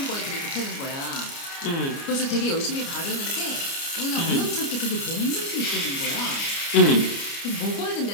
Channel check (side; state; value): right; late; 29 ms